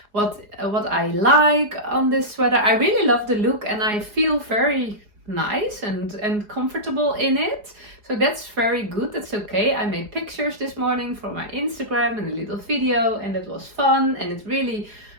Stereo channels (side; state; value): left; late; 4.8 ms